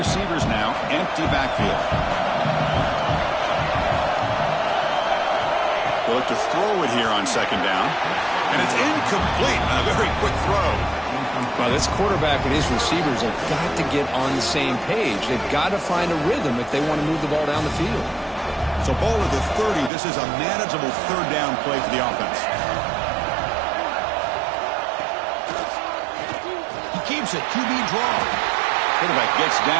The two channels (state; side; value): drops out; left; at 19.9 s